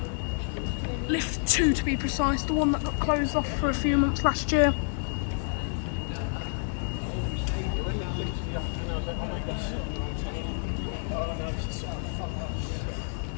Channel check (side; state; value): right; silent; 59 dB below the other